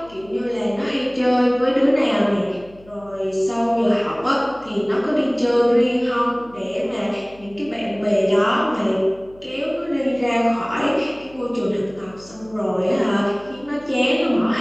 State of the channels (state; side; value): noise; left; hum, 25 dB below the sound